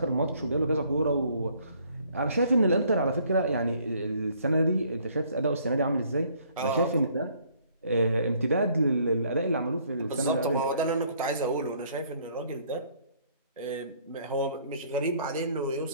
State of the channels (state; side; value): inverted; both; correlation -0.62